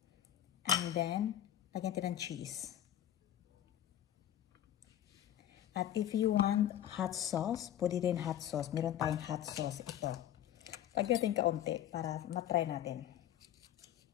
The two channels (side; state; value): right; quieter; 11.4 dB